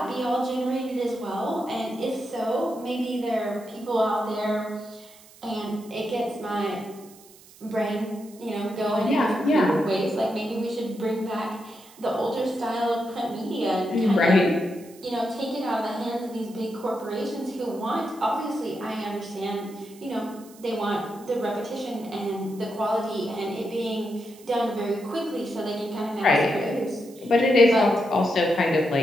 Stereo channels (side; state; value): right; noise; hiss, 23 dB below the sound